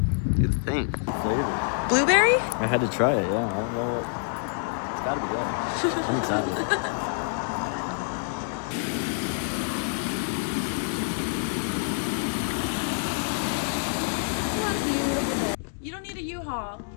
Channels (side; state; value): right; silent; 60 dB below the other